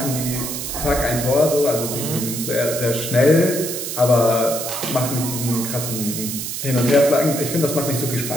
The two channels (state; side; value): noise; right; hiss, 5 dB below the sound